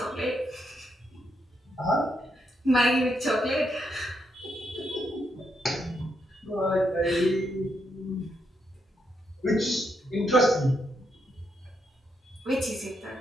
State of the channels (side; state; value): both; normal; correlation 0.80